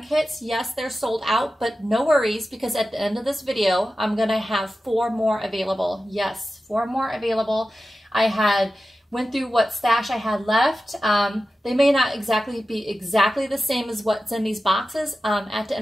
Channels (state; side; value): normal; both; correlation 0.93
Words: kits. Yes, they're sold out, but no worries, because at the end of this video, I'm gonna have 4 more available. Yes, 4 more available. I went through what stash I had left. They may not be exactly the same as what's in these boxes. At the